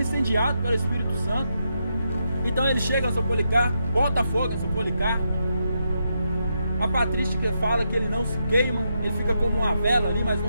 incendiado pelo Espírito Santo. Então ele chega a São Policarpo, bota fogo em São Policarpo. A patrística fala que ele não se queima, ele fica como uma vela ali, mas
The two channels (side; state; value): both; inverted; correlation -0.82